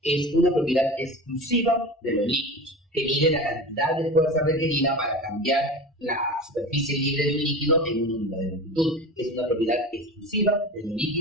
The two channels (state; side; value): normal; both; correlation 0.31